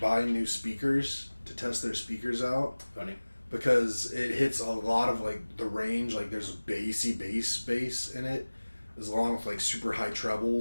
new speakers to test their speakers out. Funny. Because it hits a lot of like the range, like there's a bass in it, as long with like super high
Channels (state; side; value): inverted; both; correlation -1.00